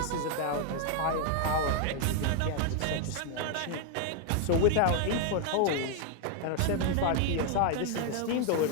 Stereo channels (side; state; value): both; different; correlation 0.00